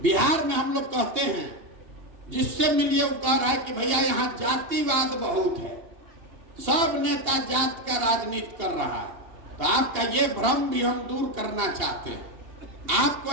बिहार में हम लोग कहते हैं, जिससे मिलिए वो कह रहा है कि भैया यहाँ जातिवाद बहुत है, सब नेता जात का राजनीति कर रहा है। तो आपका ये भ्रम भी हम दूर करना चाहते हैं। आपको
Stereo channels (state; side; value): late; left; 2.8 ms